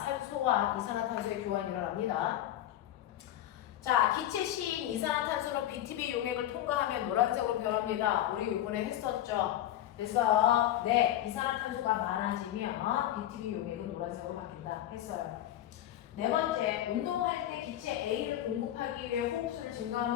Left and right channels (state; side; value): quieter; right; 12.6 dB